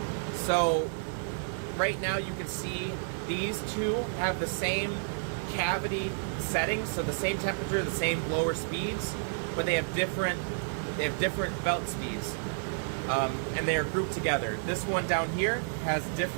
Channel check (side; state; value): left; silent; digital silence